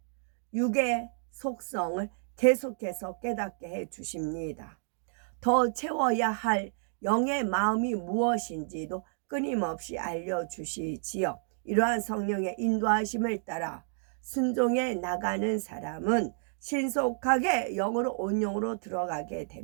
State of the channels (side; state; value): left; silent; digital silence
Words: 육의 속성을 계속해서 깨닫게 해 주십니다. 더 채워야 할 영의 마음이 무엇인지도 끊임없이 알려주시지요. 이러한 성령의 인도하심을 따라 순종해 나가는 사람은 신속하게 영으로 온영으로 들어가게